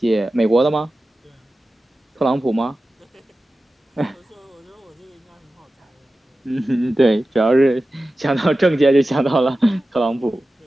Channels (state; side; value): normal; both; correlation 0.94